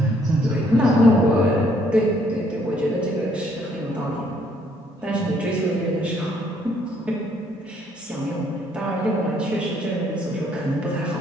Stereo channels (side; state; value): both; normal; correlation 0.66